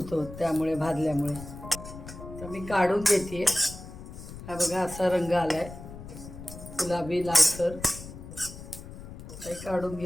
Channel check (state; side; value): noise; left; rumble, 13 dB below the sound